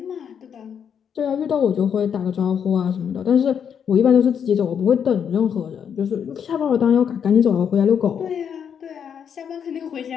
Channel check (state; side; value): quieter; right; 7.8 dB